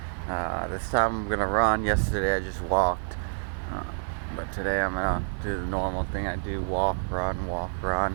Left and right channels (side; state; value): left; silent; 59 dB below the other